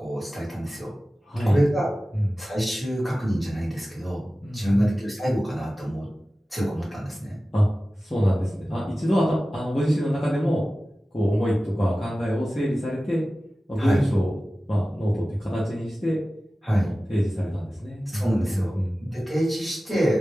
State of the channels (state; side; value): normal; both; correlation 0.96